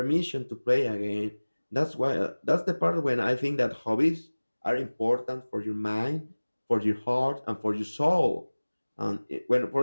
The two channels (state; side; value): inverted; both; correlation -1.00